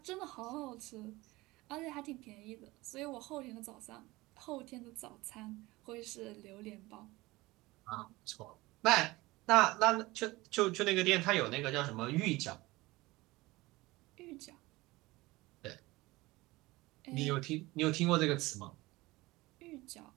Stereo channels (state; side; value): quieter; left; 20.6 dB